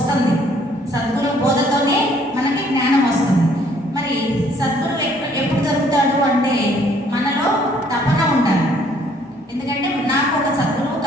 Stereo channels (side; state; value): both; normal; correlation 0.62